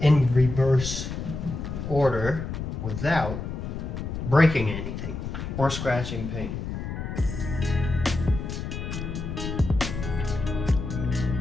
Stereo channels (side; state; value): left; noise; rumble, 5 dB below the sound